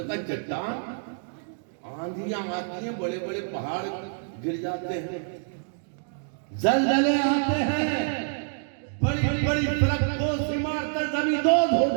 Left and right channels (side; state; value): left; silent; digital silence